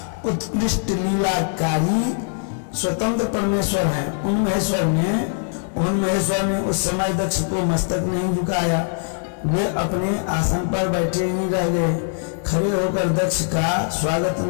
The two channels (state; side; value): silent; right; digital silence